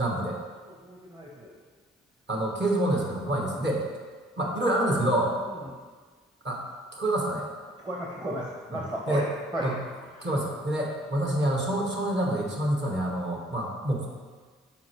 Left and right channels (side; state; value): both; normal; correlation 0.59